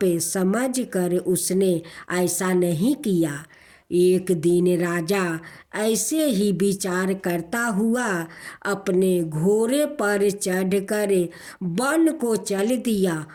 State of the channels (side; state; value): both; identical; correlation 1.00